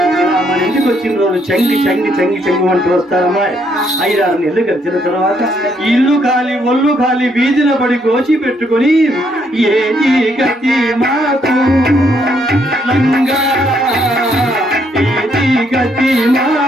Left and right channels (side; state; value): both; normal; correlation 0.72